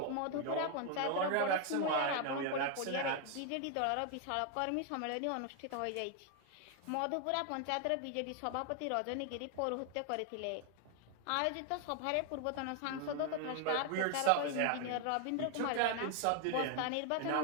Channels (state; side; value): different; both; correlation 0.00